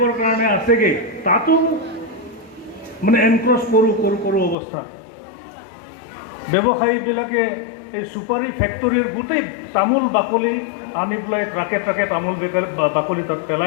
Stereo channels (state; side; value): drops out; right; at 4.5 s